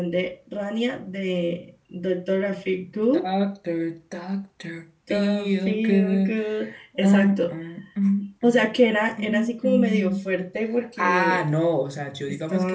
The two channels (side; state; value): both; identical; correlation 1.00